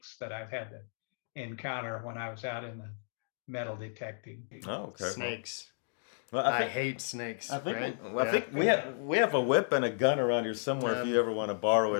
that I've had to encounter when I was out in the metal detecting. Oh, okay. Snakes. Well, I hate snakes. I think, right? I think we have a whip and a gun around here somewhere if you ever want to borrow it.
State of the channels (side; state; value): right; silent; digital silence